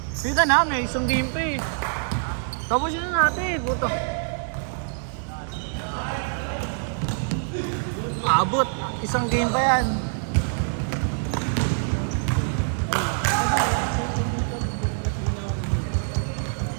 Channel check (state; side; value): silent; left; digital silence